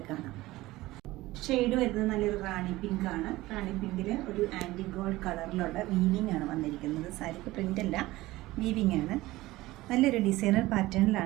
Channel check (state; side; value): quieter; left; 18.3 dB